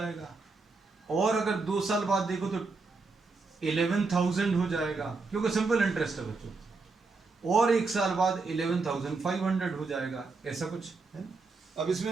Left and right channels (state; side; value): quieter; left; 4.0 dB